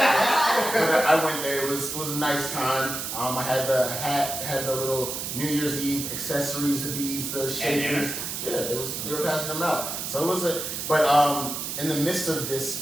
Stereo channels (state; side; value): noise; right; hiss, 4 dB below the sound